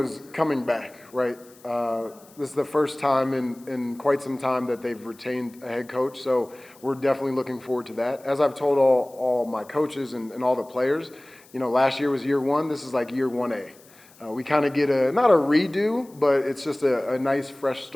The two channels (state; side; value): noise; left; hiss, 26 dB below the sound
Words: coming back, right? This is the first time in quite some time that they've retained a head coach, so we're definitely looking forward to that. As I've told all my coaches and all the players, last year was year one. This is like year 1A. We kind of get not a redo, but it's just a nice fresh